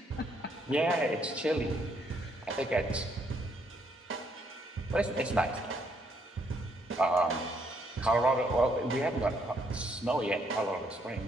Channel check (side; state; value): both; normal; correlation 0.71